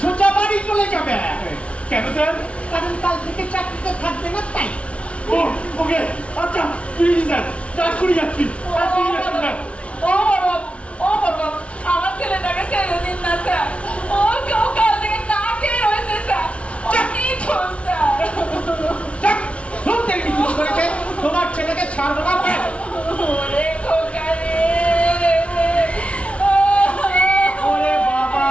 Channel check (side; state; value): right; late; 0.062 ms